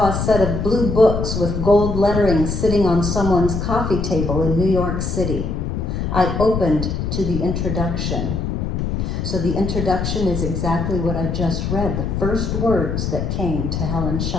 a set of blue books with gold lettering sitting on someone's coffee table in New York City. I opened to the introduction. So the introduction is exactly what I just read, the first words that came to Helen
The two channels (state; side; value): noise; left; rumble, 2 dB below the sound